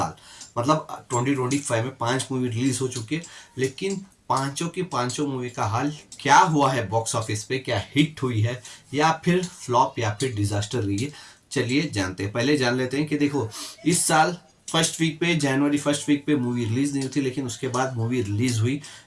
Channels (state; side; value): identical; both; correlation 1.00